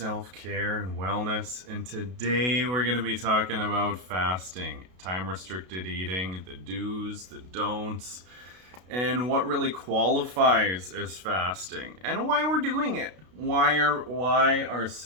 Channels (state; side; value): late; left; 32 ms